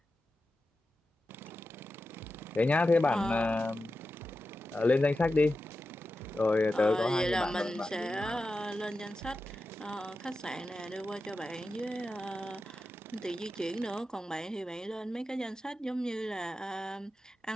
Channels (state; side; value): normal; both; correlation 0.92